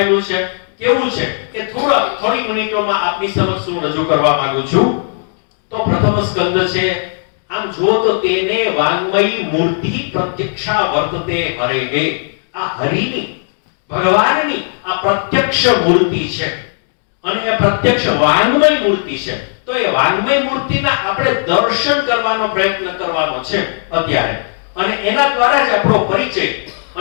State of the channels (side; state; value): right; silent; digital silence